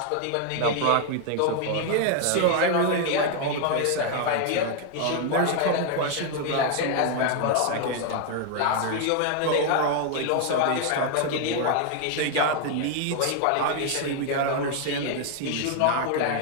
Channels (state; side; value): different; both; correlation 0.00